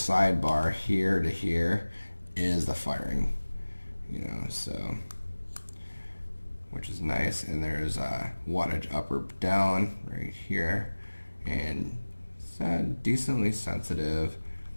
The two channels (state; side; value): inverted; both; correlation -1.00